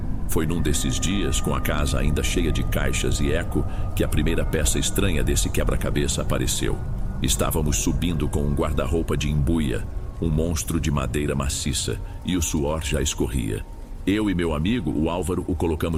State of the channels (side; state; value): both; identical; correlation 1.00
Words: Foi num desses dias, com a casa ainda cheia de caixas e eco, que a primeira peça estranha desse quebra-cabeça apareceu. Estávamos subindo com um guarda-roupa de embuia, um monstro de madeira maciça, e o suor já escorria. Eu e meu amigo, o Álvaro, o